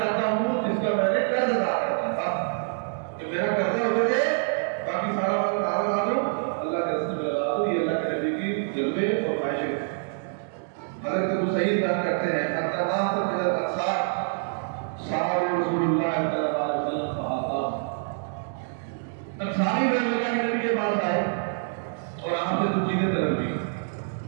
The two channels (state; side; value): silent; left; digital silence